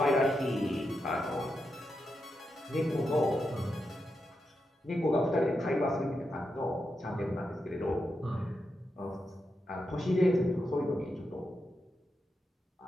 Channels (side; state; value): both; normal; correlation 0.86